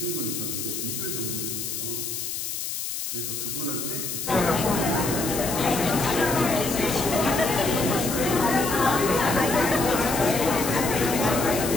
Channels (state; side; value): noise; left; hiss, 4 dB below the sound